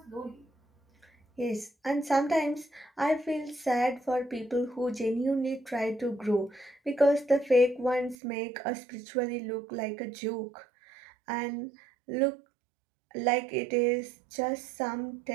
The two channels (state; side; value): drops out; left; at 8.2 s